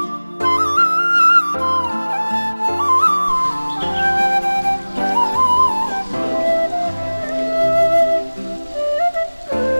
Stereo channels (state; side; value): inverted; both; correlation -1.00